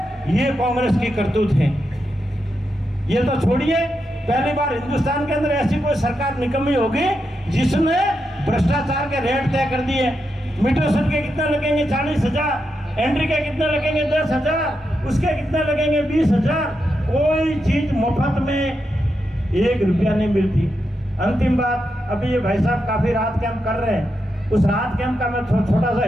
ये कांग्रेस की करतूत है। ये तो छोड़िए, पहली बार हिंदुस्तान के अंदर ऐसी कोई सरकार निकम्मी होगी जिसने भ्रष्टाचार के रेट तय कर दिए। मीटर के कितने लगेंगे 40,000, एंट्री के कितने लगेंगे 10,000, उसके कितने लगेंगे 20,000। कोई चीज मुफ्त में 1 रुपया नहीं मिलती। अंतिम बात, अभी ये भाई साहब काफी रात कैंप कर रहे हैं, उस रात कैंप का मैं छोटा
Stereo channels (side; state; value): both; normal; correlation 0.85